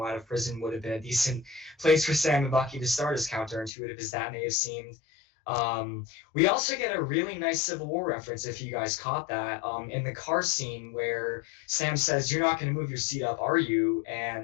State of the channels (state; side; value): drops out; right; at 3.7 s